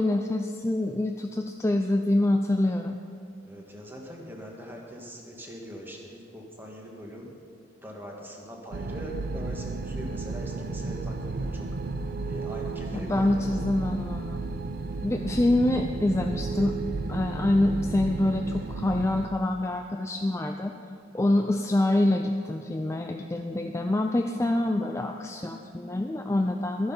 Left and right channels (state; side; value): normal; both; correlation 0.89